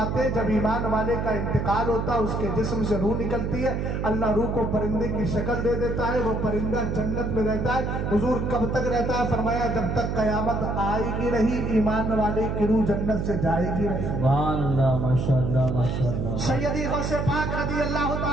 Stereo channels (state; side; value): noise; right; hum, 1 dB below the sound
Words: ہیں جب ایمان والے کا انتقال ہوتا ہے اس کے جسم سے روح نکلتی ہے، اللہ روح کو پرندے کی شکل دے دیتا ہے، وہ پرندہ جنت میں رہتا ہے۔ حضور کب تک رہتا ہے؟ فرمایا جب تک قیامت آئے گی نہیں، ایمان والے کی روح جنت سے جائے گی نہیں۔ سبحان اللہ، ماشاءاللہ ماشاءاللہ۔ سیدی غوث پاک رضی اللہ